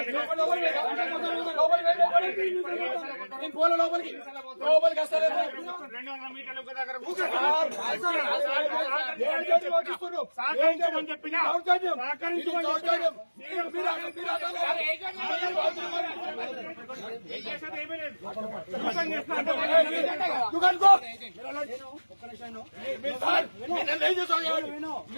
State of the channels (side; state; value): both; inverted; correlation -1.00